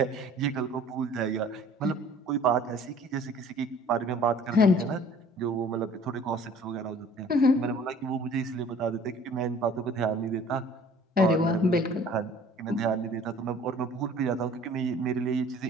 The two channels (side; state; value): both; normal; correlation 0.51